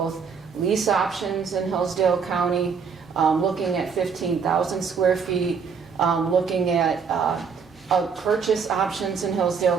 lease options in Hillsdale County, looking at 15,000 square feet, looking at purchase options in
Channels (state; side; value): quieter; left; 6.0 dB